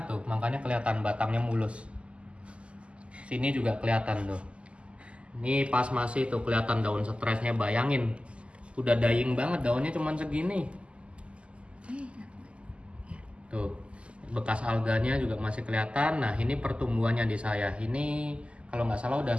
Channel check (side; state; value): left; late; 0.055 ms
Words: tuh, makanya kelihatan batangnya mulus. Sini juga kelihatan tuh. Ini pas masih tuh kelihatan daun stresnya, bayangin. Udah dying banget, daunnya cuman segini. Tuh, bekas alganya juga masih kelihatan. Nah, ini pertumbuhannya di saya. Ini kalau nggak salah udah